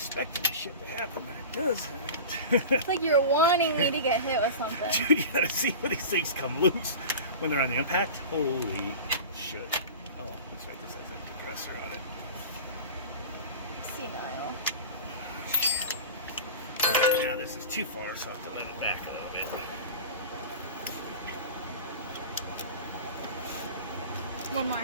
this shit to happen, but it doesn't. It's like you're wanting me to get hit with something. Dude, you gotta see when these things come loose when they're on the impact. Holy shit. Oh, that's right. This has that depressor on it. Senile. Alright, now this is too far, so I'll have to let it back a little bit. One more.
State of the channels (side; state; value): both; inverted; correlation -0.33